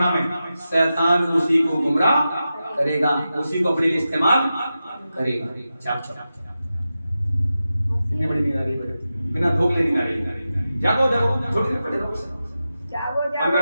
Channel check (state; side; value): inverted; both; correlation -0.92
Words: में, शैतान उसी को गुमराह करेगा, उसी को अपने लिए इस्तेमाल करेगा। कितनी बड़ी नींद आ रही है, बिना धोखे नींद आ रही है। जागो जागो, थोड़ी देर पड़े रहो,